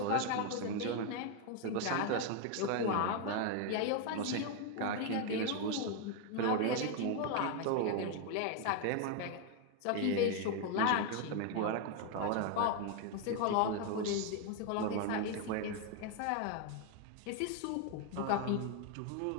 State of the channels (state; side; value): different; both; correlation 0.01